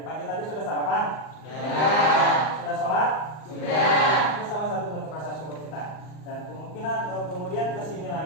pagi tadi sudah sarapan? Sudah. Sudah sholat? Sudah. Itu salah satu bentuk rasa syukur kita. Dan kemudian kesini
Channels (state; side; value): late; right; 39 ms